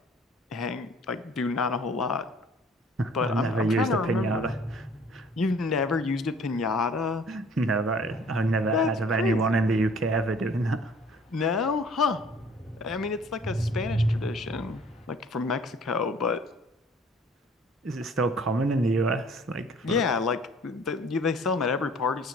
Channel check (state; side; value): normal; both; correlation 0.53